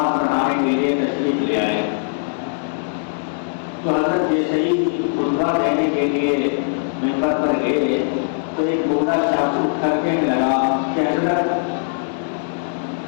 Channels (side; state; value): right; silent; 65 dB below the other